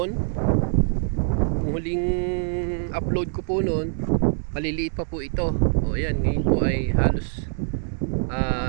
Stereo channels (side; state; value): left; silent; 62 dB below the other